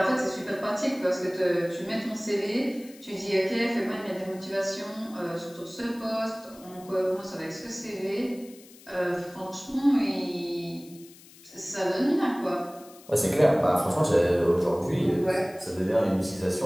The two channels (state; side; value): noise; left; hiss, 22 dB below the sound